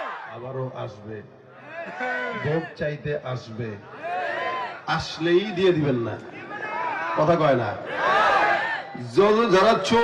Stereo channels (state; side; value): identical; both; correlation 1.00